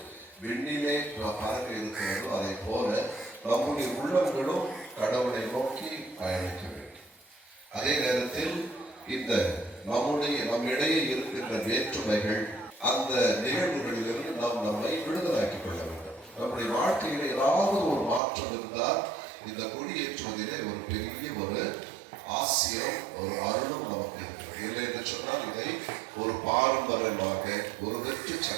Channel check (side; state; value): left; drops out; at 18.2 s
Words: விண்ணிலே பறக்க இருக்கிறதோ அதை போல நம்முடைய உள்ளங்களும் கடவுளை நோக்கி பயணிக்க வேண்டும். அதே நேரத்தில் இந்த நம்மிடையே இருக்கின்ற வேற்றுமைகள் அந்த நிகழ்வுகளிலிருந்து நாம் நம்மை விடுதலாக்கிக் கொள்ள வேண்டும். நம்முடைய வாழ்க்கையில் ஏதாவது ஒரு மாற்றம் இருந்தால் இந்த கொடியேற்றுவதிலே ஒரு பெரிய ஒரு ஆசியம் ஒரு அருளும் நமக்கு இருக்கிறது. இல்லை என்று சொன்னால் இதை ஒரு பாரம்பரியமாக ஒரு வெற்றி